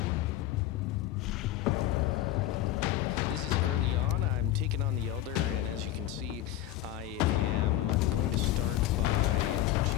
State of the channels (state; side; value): quieter; right; 13.5 dB